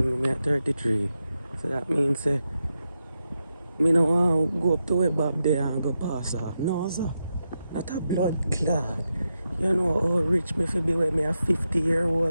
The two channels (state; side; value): inverted; both; correlation -0.87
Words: me at 33. So that means me no want to go up to where Bob there and go pass off. No, sir. Not a blood clot. You know how rich me fi be when me a